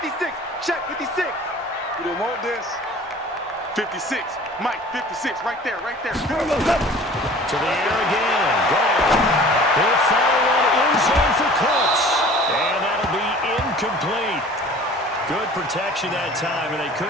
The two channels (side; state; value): both; normal; correlation 0.46